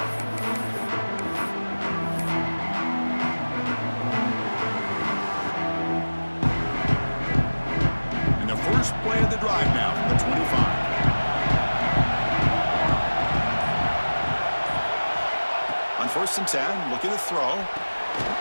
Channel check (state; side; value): inverted; both; correlation -1.00